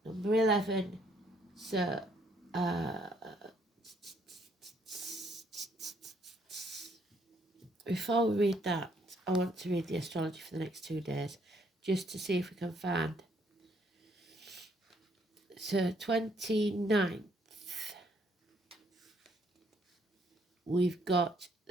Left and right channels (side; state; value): both; normal; correlation 0.68